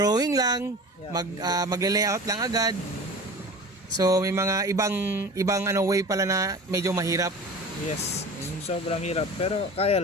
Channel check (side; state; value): both; normal; correlation 0.37